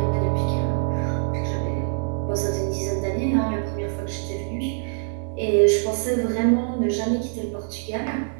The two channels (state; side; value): silent; left; digital silence